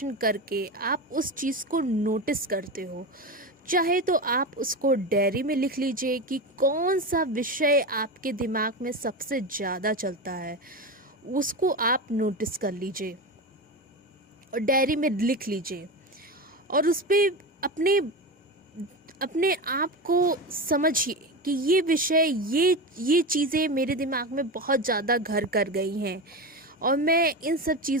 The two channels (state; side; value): normal; both; correlation 0.21